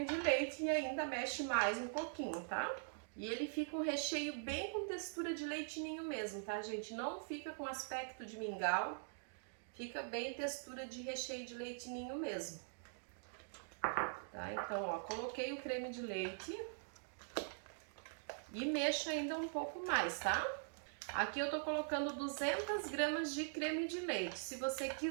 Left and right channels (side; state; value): left; silent; digital silence